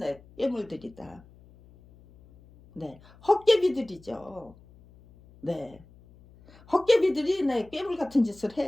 깨물들이다. 헛개비들이죠. 헛개비들이 깨물 같은 짓을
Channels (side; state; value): left; noise; hum, 25 dB below the sound